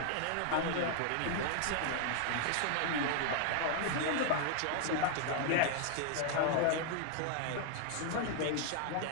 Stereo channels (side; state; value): both; different; correlation 0.00